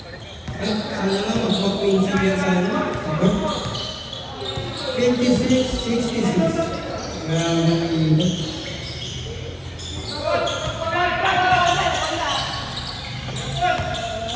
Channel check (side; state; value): both; identical; correlation 1.00